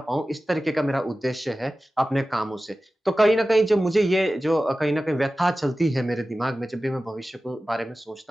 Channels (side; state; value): both; normal; correlation 0.95